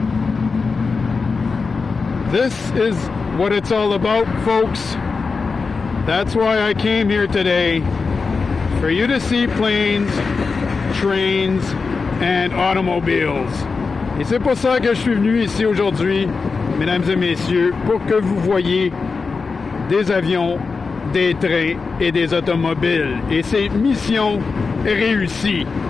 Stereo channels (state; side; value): quieter; right; 4.6 dB